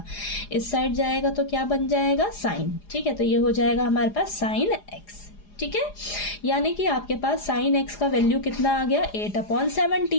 इस साइड जाएगा तो क्या बन जाएगा, साइन। ठीक है, तो ये हो जाएगा हमारे पास साइन x। ठीक है, यानी कि आपके पास साइन x का वैल्यू कितना आ गया,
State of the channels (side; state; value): right; late; 4.9 ms